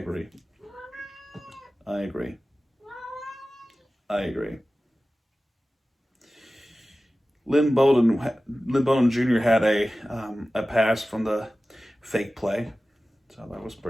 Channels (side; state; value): both; normal; correlation 0.96